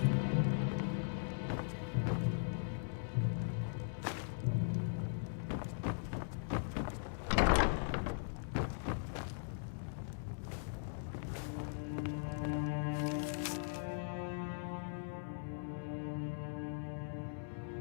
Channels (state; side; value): silent; right; digital silence